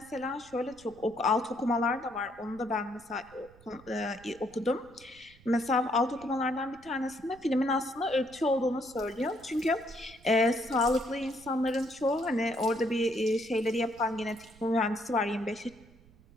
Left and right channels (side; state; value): right; noise; rumble, 25 dB below the sound